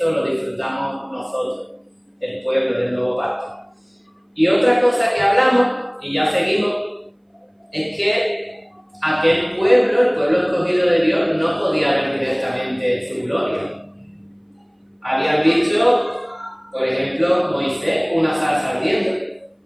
lo disfrutamos nosotros, el pueblo del Nuevo Pacto. Y otra cosa que hablamos, y ya seguimos, es que aquel pueblo, el pueblo escogido de Dios, no podía ver directamente su gloria. Habían visto, por ejemplo, Moisés, una zarza ardiendo.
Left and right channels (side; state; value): both; identical; correlation 1.00